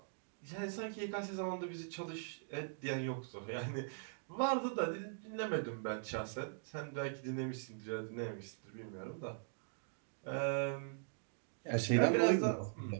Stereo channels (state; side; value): silent; left; digital silence